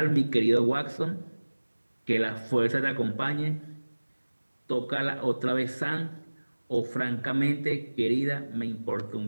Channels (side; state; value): both; inverted; correlation -1.00